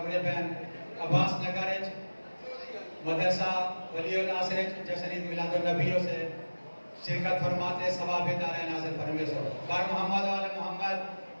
پہن عباس نگر مدرسہ ولی الناصر جشن عید میلاد النبی سے شرکت فرماتے ثواب دار نازل فرمے سو بار محمد وعلی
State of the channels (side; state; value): both; inverted; correlation -1.00